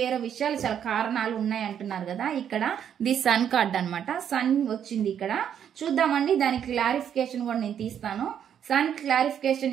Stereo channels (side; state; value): left; quieter; 9.0 dB